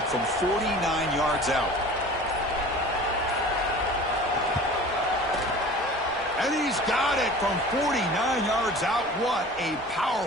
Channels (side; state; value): both; normal; correlation 0.41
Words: from 49 yards out. And he's got it from 49 yards out. What a